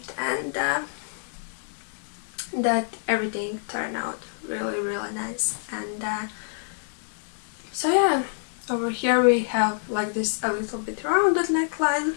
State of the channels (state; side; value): silent; right; 61 dB below the other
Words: and that everything turned out really nice. And so yeah, over here we have like this a little bit rounded neckline,